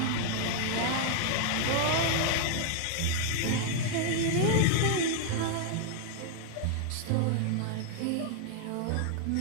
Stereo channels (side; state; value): both; different; correlation 0.00